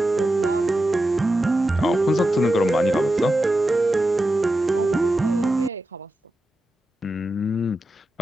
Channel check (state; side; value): normal; both; correlation 0.90